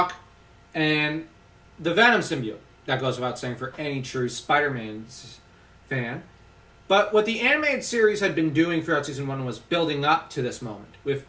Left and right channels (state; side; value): identical; both; correlation 1.00